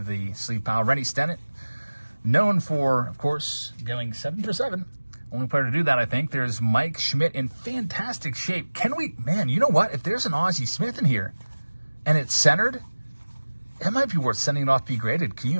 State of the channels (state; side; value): inverted; both; correlation -1.00